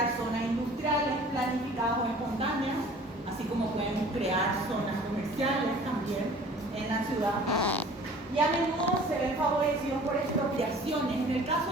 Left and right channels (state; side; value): normal; both; correlation 0.48